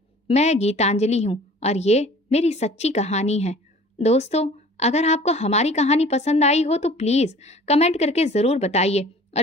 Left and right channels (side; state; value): both; normal; correlation 0.48